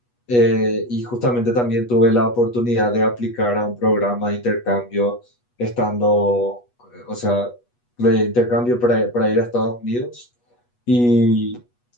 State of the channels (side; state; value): right; late; 8.3 ms